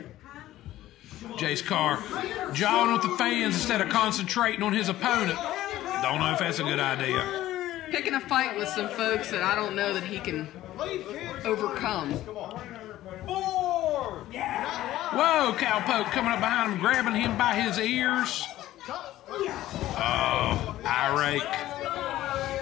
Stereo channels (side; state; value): right; quieter; 14.6 dB